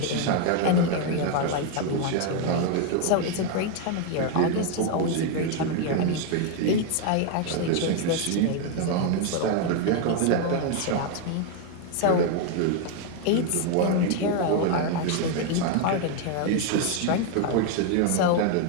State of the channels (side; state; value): both; different; correlation 0.01